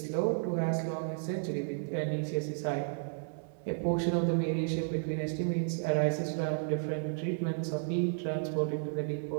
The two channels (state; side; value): silent; left; 56 dB below the other